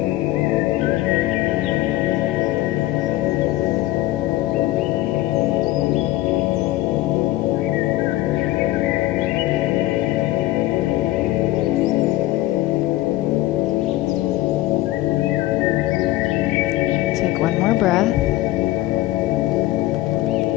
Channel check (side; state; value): right; quieter; 16.4 dB